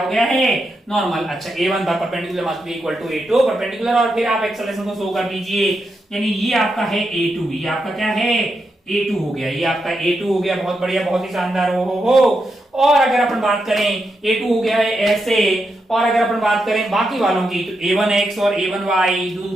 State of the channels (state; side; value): normal; both; correlation 0.85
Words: गया है नॉर्मल। अच्छा a1 perpendicular must be equal to a2 perpendicular, और फिर आप एक्सेलरेशन को शो कर दीजिए, यानी ये आपका है a2, ये आपका क्या है a2 हो गया, ये आपका a2 हो गया। बहुत बढ़िया, बहुत ही शानदार। हो। और अगर अपन बात करें a2 हो गया है ऐसे, और अगर अपन बात करें बाकी वालों की तो a1x और a1y